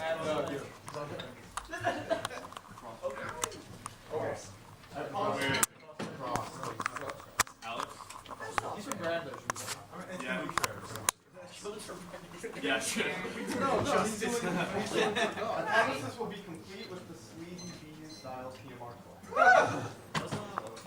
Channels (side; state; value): both; identical; correlation 1.00